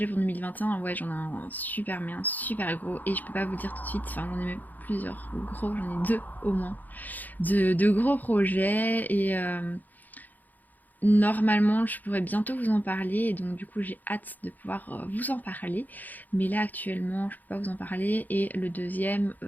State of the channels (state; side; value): late; right; 0.083 ms